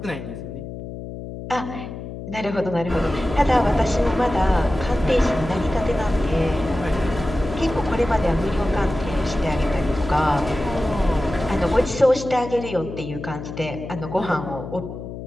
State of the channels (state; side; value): noise; left; hum, 10 dB below the sound